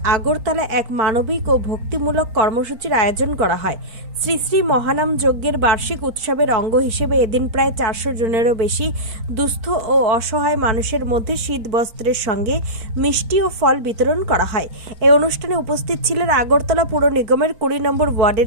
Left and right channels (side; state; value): left; late; 4.4 ms